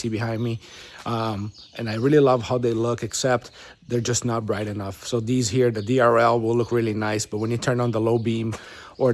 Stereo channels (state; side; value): identical; both; correlation 1.00